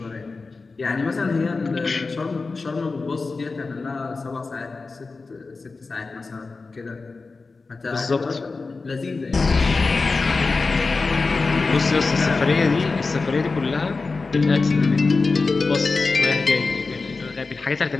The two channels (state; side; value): quieter; right; 4.0 dB